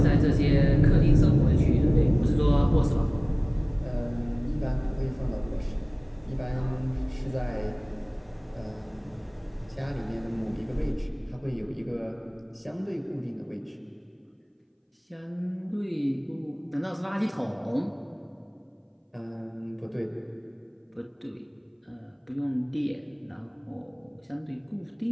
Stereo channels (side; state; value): both; identical; correlation 1.00